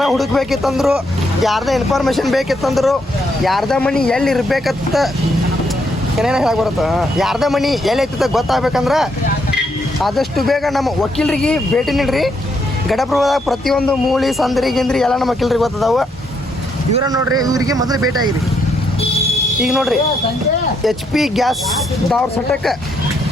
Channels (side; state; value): both; normal; correlation 0.75